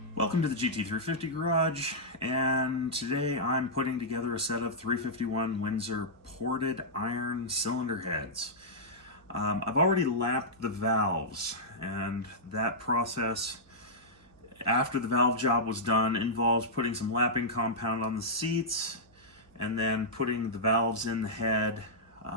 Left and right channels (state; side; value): noise; right; hum, 30 dB below the sound